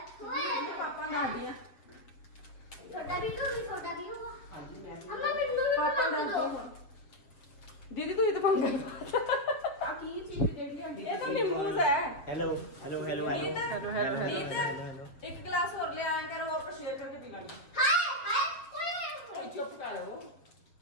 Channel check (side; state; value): right; late; 7.3 ms